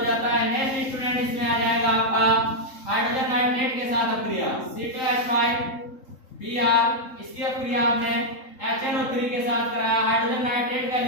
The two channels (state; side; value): late; right; 3.7 ms